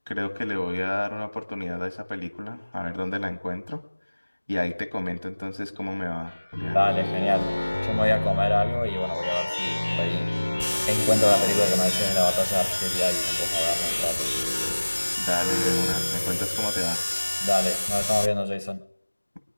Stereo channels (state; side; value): inverted; both; correlation -1.00